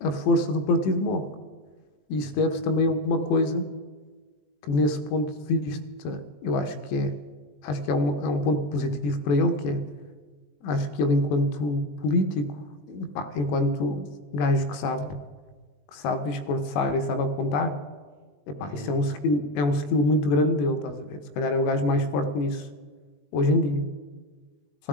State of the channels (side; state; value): right; late; 20 ms